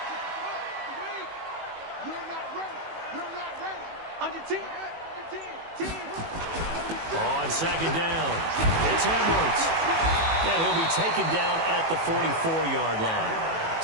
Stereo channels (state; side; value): late; left; 18 ms